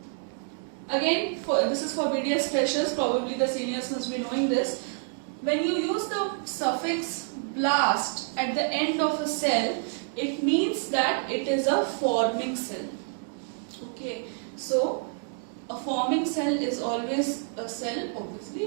Again, this is for BDS freshers, probably the seniors must be knowing this. When you use the suffix blast at the end of a cell, it means that it is a forming cell. Okay, so a forming cell is always a cell,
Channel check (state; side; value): silent; left; 59 dB below the other